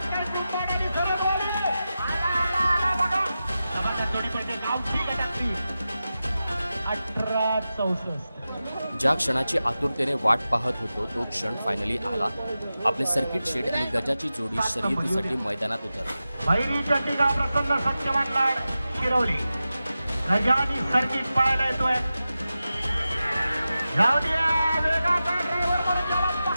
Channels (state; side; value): inverted; both; correlation -0.93